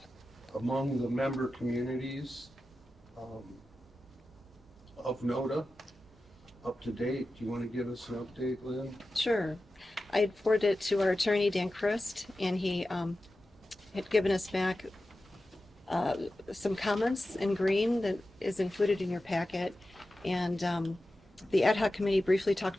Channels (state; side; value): normal; both; correlation 0.93